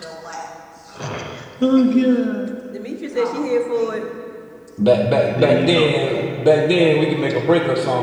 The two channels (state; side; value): identical; both; correlation 1.00